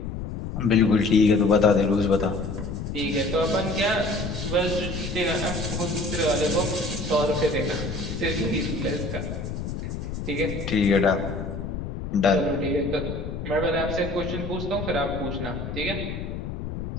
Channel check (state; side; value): noise; left; rumble, 6 dB below the sound